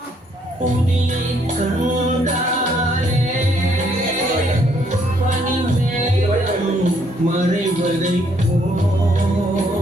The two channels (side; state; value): both; normal; correlation 0.69